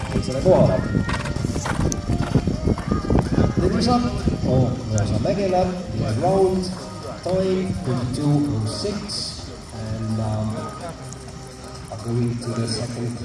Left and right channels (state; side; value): identical; both; correlation 1.00